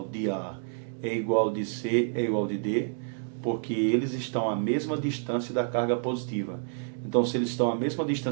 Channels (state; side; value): silent; left; digital silence